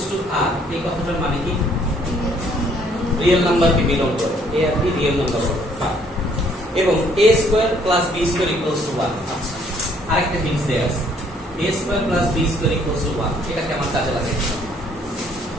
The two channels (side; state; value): both; normal; correlation 0.64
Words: to R এই কথাটার মানে কি? রিয়েল নাম্বারকে বিলং করে, a আর b রিয়েল নাম্বার হবে। এবং a square plus b square equals to 1। আচ্ছা, আরেকটা হিন্টস দেয়া আছে, a square plus b square equals to 1। এটাকে আমার কাজে লাগাই।